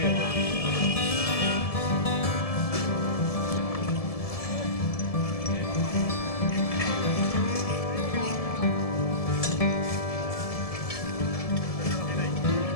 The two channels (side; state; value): right; late; 1.7 ms